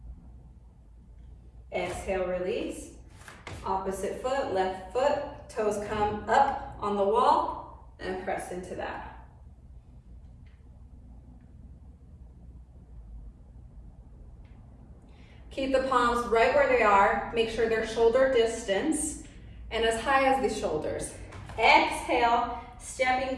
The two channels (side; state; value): both; identical; correlation 1.00